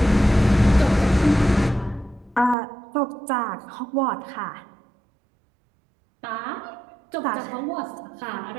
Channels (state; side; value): drops out; left; at 2.6 s